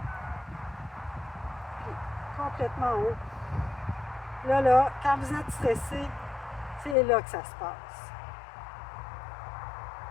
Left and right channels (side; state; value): right; drops out; at 7.0 s